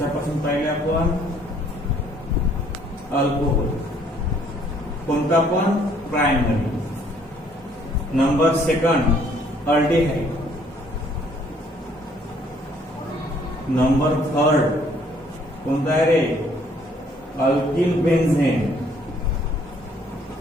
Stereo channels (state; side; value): normal; both; correlation 0.63